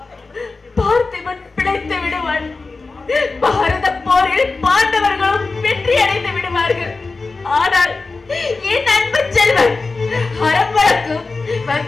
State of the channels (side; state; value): right; quieter; 3.8 dB